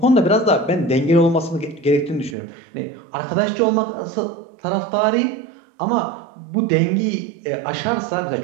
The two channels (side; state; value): left; drops out; at 2.4 s